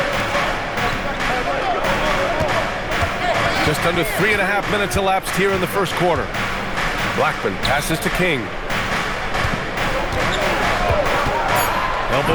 Just under 3.5 minutes elapsed here in the first quarter. Blackman passes to King.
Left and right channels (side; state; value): both; identical; correlation 1.00